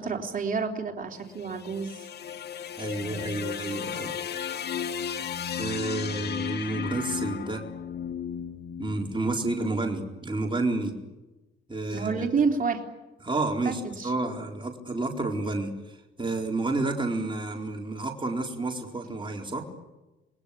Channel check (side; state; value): both; normal; correlation 0.56